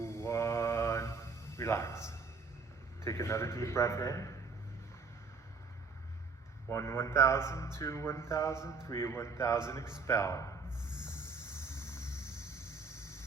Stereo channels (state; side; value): quieter; left; 4.6 dB